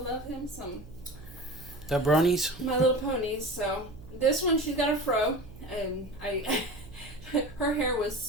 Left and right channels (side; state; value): right; noise; hum, 17 dB below the sound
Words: him some. The bronies? My Little Ponies. So this one, she's got a fro, and her hair was